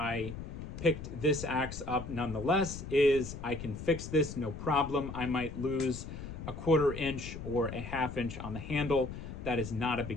picked this axe up nonetheless is I can fix this, no problem. I might lose a 1/4 inch or a 1/2 inch on the handle. That is not a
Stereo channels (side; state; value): left; noise; rumble, 9 dB below the sound